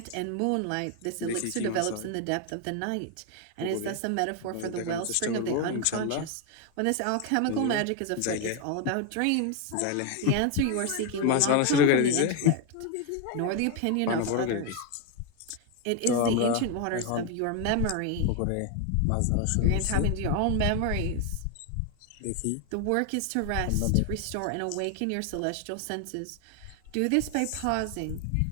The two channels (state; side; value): different; both; correlation 0.01